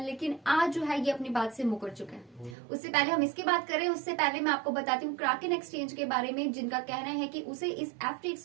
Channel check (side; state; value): left; drops out; at 2.6 s